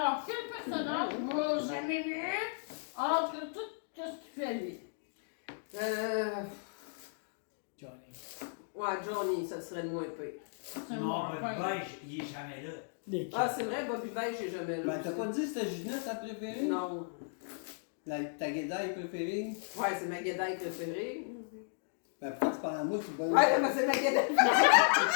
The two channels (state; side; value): silent; right; digital silence